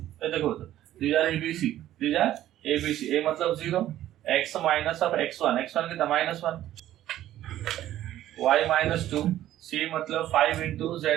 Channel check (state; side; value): quieter; left; 13.1 dB